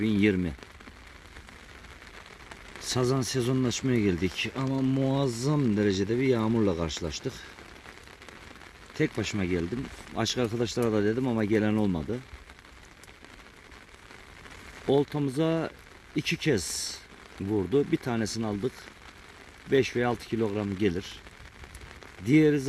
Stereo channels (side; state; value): both; identical; correlation 1.00